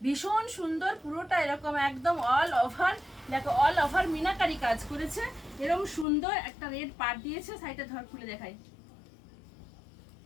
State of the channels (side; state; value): right; drops out; at 6.1 s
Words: ভীষণ সুন্দর। পুরোটা এরকম একদম অল ওভার, দেখো অল ওভার মিনাকারি কাজ করেছে। এরকম সুন্দর একটা রেড পাট দিয়েছে, সাইডে ধর খুলে দেখাই,